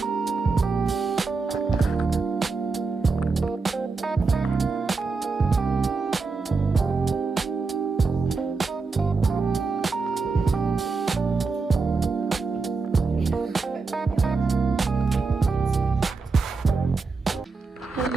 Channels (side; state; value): left; quieter; 4.3 dB